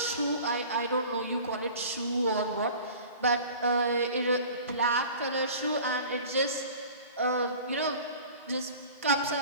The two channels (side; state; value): both; inverted; correlation -0.42